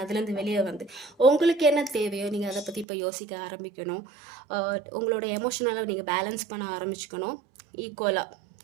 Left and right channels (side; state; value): left; drops out; at 2.9 s